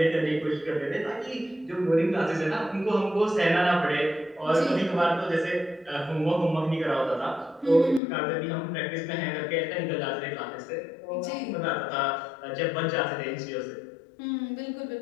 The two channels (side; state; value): right; drops out; at 8.0 s